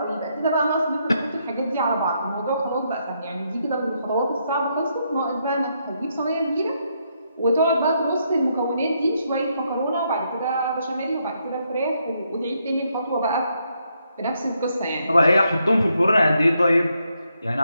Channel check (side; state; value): both; inverted; correlation -0.77